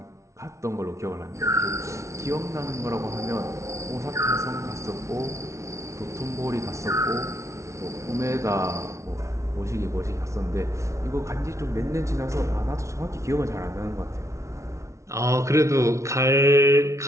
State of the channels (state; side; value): late; left; 0.14 ms